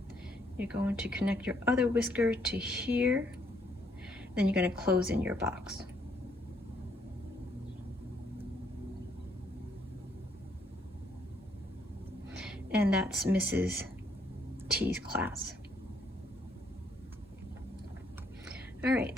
You're going to connect your other whisker to here. Then you're going to close in your box. And that's Mrs. T's class. All right,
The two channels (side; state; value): both; normal; correlation 0.70